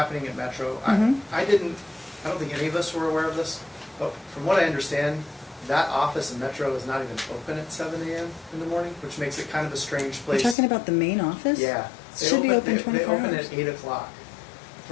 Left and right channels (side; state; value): right; drops out; at 10.6 s